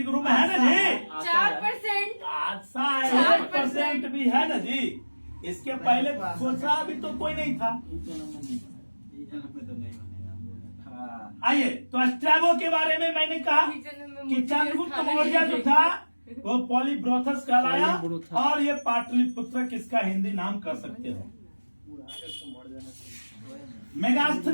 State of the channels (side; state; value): both; inverted; correlation -1.00